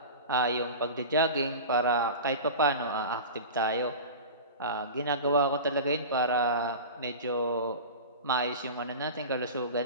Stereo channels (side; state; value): both; inverted; correlation -0.31